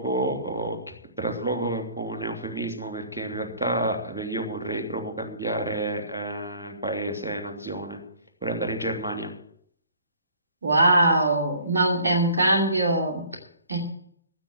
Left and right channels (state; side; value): inverted; both; correlation -0.53